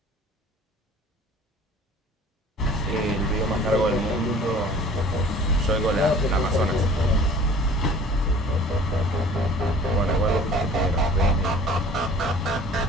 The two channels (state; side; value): normal; both; correlation 0.47